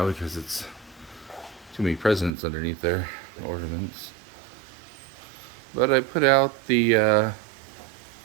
because it's too many presents underneath there, ornaments. But I put out the,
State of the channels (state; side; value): drops out; left; at 2.3 s